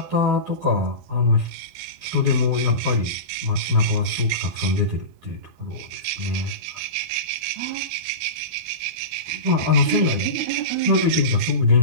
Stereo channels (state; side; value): late; left; 12 ms